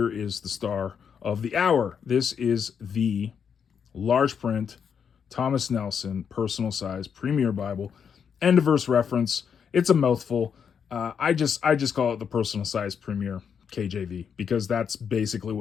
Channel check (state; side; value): quieter; right; 7.1 dB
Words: is the star of the hour. This is the large print Thomas Nelson personal size Premier Bible, end of verse reference. It's a mouthful. I just call it the personal size Premier. KJV, because that's basically